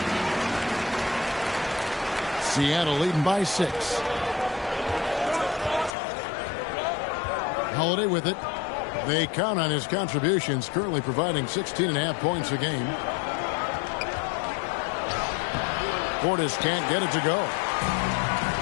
Seattle leading by 6. Holiday with it. They count on his contributions, currently providing 16.5 points a game. Portis can't get it to go.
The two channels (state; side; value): drops out; right; at 6.0 s